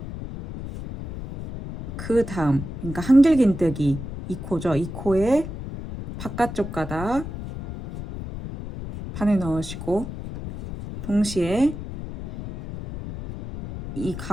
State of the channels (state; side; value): noise; left; rumble, 9 dB below the sound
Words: 그 다음, 그러니까 한길긴뜨기 이 코죠. 이 코에 바깥쪽 가닥 반을 넣으시고 동시에 이